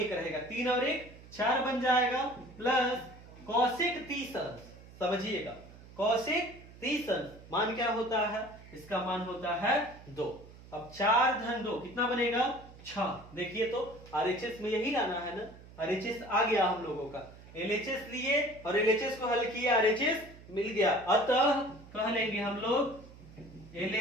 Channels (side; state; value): right; noise; hum, 19 dB below the sound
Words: रहेगा, 3 और 1 4 बन जाएगा, प्लस cosec 30 अंश, समझिएगा cosec 30 अंश मान क्या होता है, इसका मान होता है 2। अब 4 धन 2 कितना बनेगा 6, देखिए तो RHS में यही लाना है ना, RHS आ गया हम लोगों का, LHS लिए और LHS को हल किया RHS मिल गया, अतः कह लेंगे हम लोग